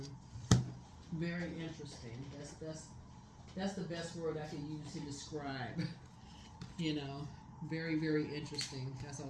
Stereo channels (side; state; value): both; identical; correlation 1.00